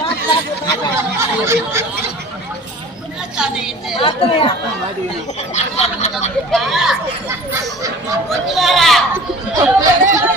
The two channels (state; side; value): normal; both; correlation 0.43